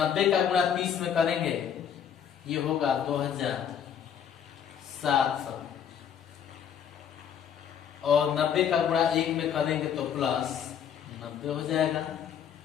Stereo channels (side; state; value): right; quieter; 8.5 dB